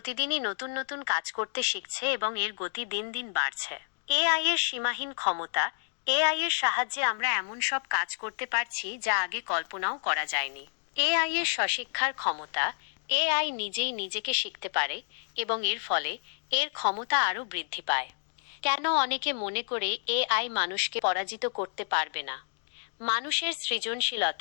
নতুন নতুন কাজ করতে শিখছে এবং এর গতি দিন দিন বাড়ছে। এআই এর সীমাহীন ক্ষমতা। এআই এর সাহায্যে আমরা এমন সব কাজ করতে পারছি যা আগে কল্পনাও করা যায়নি। এআই এর স্বশিক্ষার ক্ষমতা। এআই নিজেই নিজেকে শিখতে পারে এবং এর ফলে এর ক্ষমতা আরও বৃদ্ধি পায়। কেন অনেকে মনে করে এআই মানুষকে পরাজিত করতে পারবে না? মানুষের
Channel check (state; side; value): silent; right; digital silence